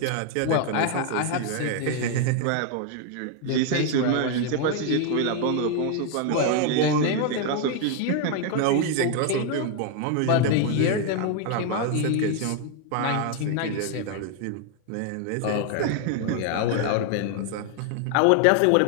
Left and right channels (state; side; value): different; both; correlation 0.00